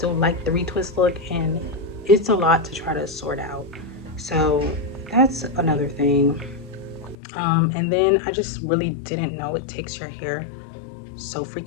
like the retwist look, and it's a lot to try to sort out. So that's another thing. And then I just really didn't know it takes your hair so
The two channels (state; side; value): drops out; right; at 7.2 s